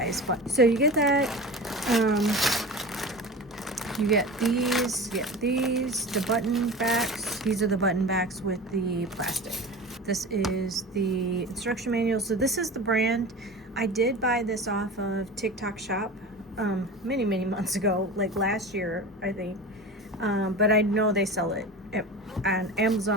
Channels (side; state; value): both; normal; correlation 0.32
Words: button. So you get that. You get these, the button backs. These are the button backs with the plastic. This is the instruction manual. So this is the brand. I did buy this off of TikTok Shop many months ago, like last year, I think. But I know they sell it on